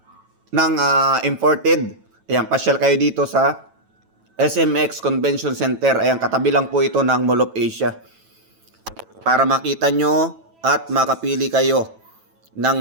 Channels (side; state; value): left; late; 9.1 ms